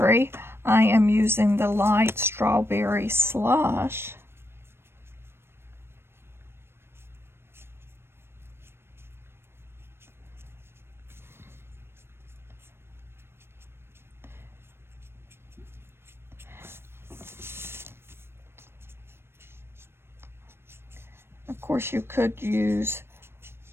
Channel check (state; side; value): late; left; 0.12 ms